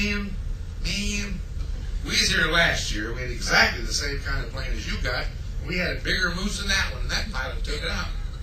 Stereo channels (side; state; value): both; identical; correlation 1.00